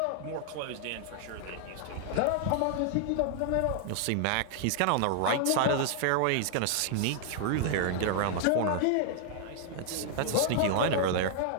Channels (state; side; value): different; both; correlation 0.00